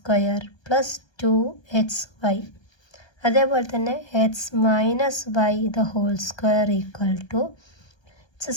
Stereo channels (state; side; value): late; right; 1.3 ms